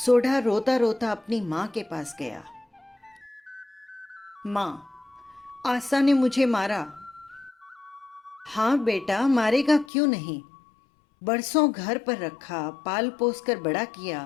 रोता रोता अपनी मां के पास गया। माँ, आशा ने मुझे मारा। हाँ बेटा, मारेगा क्यों नहीं। बरसों घर पर रखा, पाल पोस कर बड़ा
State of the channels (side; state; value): right; drops out; at 9.9 s